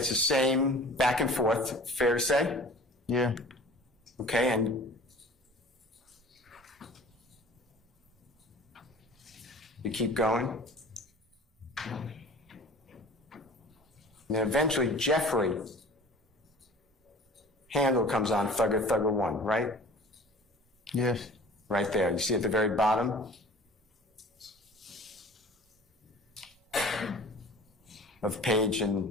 the same back and forth, fair to say? Yeah. Okay, and you keep going. And then eventually Jeffrey handle comes on, thugger 1, right? Yes. Right there. You see at the very bottom of page,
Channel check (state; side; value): normal; both; correlation 0.44